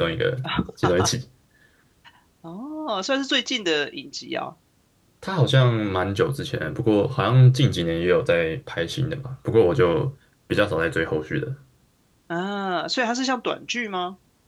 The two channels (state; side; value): identical; both; correlation 1.00